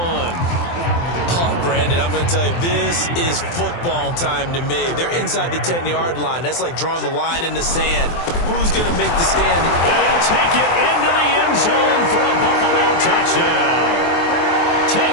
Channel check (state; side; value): late; right; 23 ms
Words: Brandon, I'm going to tell you, this is football time to me. They're inside the 10-yard line. That's like drawing the line in the sand. Who's going to make the stand? And he'll take it into the end zone for a Buffalo touchdown.